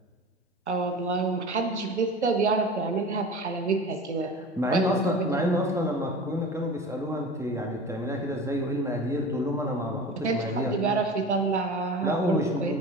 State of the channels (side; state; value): both; normal; correlation 0.36